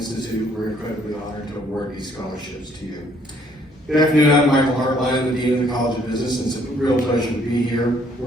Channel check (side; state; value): both; normal; correlation 0.64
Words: we're incredibly honored to award these scholarships to you. Good afternoon, I'm Michael Hartline, the Dean of the College of Business, and it's a real pleasure to be here.